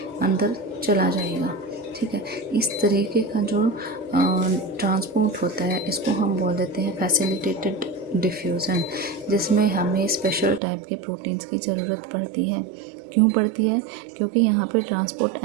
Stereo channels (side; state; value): left; drops out; at 10.6 s